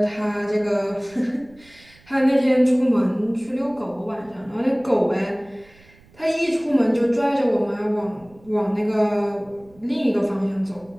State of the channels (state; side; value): noise; right; rumble, 27 dB below the sound